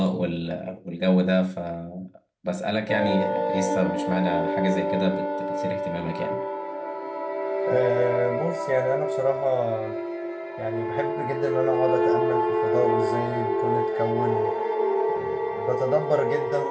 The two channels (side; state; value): both; identical; correlation 1.00